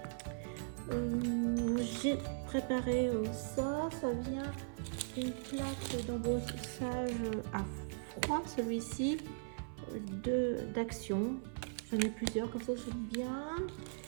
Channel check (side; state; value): left; silent; 52 dB below the other